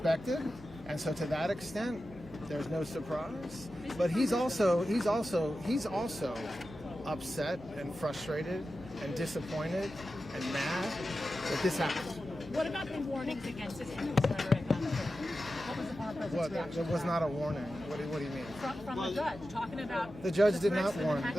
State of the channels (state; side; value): noise; left; hum, 21 dB below the sound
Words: and so to that extent, there's no surprise. But he's also upset and frustrated and disappointed and mad that this happened. What about the warnings against his rhetoric? What was the former president's reaction? It was not a warning. What do you mean? From the judge, talking about... The judge did not warn.